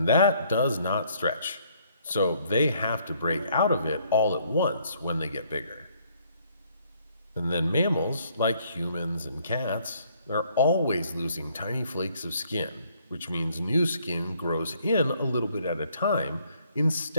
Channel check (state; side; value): inverted; both; correlation -0.65